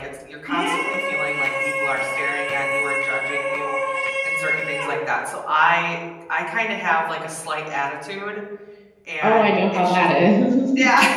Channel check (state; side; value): identical; both; correlation 1.00